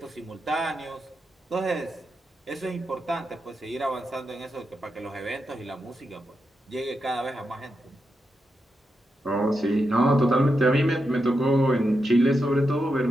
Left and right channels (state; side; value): normal; both; correlation 0.86